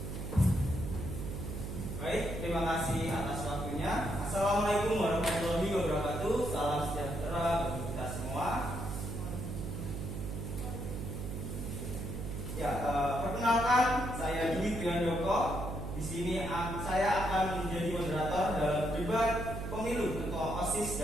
Baik, terima kasih atas waktunya. Assalamualaikum warahmatullahi wabarakatuh. Salam sejahtera bagi kita semua. Ya, perkenalkan saya Dwi Triandoko. Di sini saya akan menjadi moderator dalam debat pemilu Ketua OSIS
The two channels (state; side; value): noise; right; hum, 6 dB below the sound